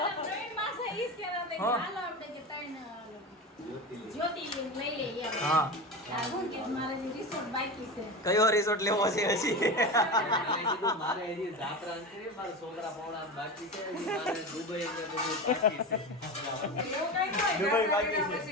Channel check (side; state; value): both; normal; correlation 0.25